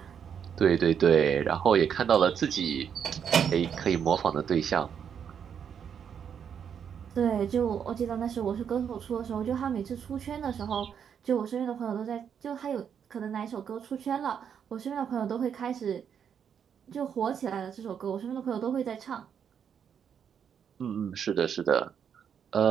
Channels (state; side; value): quieter; left; 7.8 dB